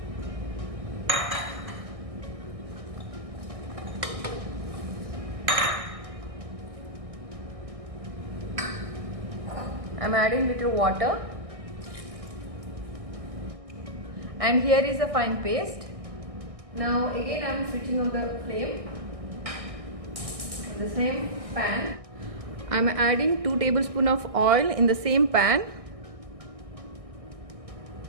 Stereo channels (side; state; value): left; late; 1.6 ms